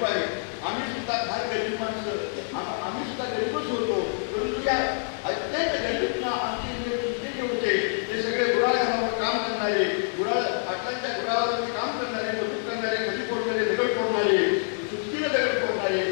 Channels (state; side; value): silent; right; 59 dB below the other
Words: आहे. आम्ही सुद्धा फार गरीब माणसं, आम्ही सुद्धा गरीबच होतो. परंतु या अत्यंत गरीबना आमचे जे होते ते सगळे गुराळ्यावर काम करणारे, पाटलांच्या गुराळावरती काम करणारे, मजूर करणारे, खडी फोडणारे, दगड फोडणारे, सुस्तीने दगड फोडणारे,